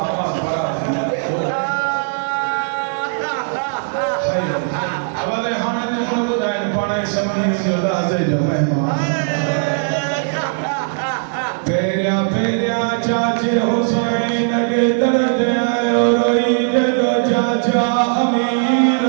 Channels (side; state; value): left; silent; digital silence